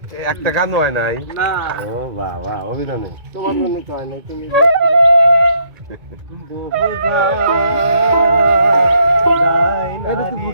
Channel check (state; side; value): late; left; 2.2 ms